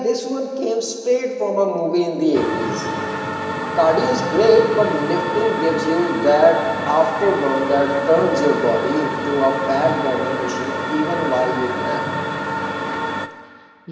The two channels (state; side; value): identical; both; correlation 1.00